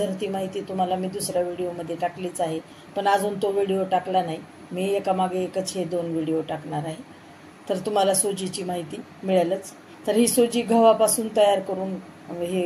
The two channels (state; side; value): identical; both; correlation 1.00